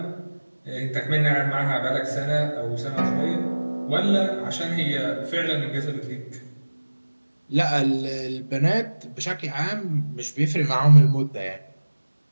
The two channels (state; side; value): inverted; both; correlation -1.00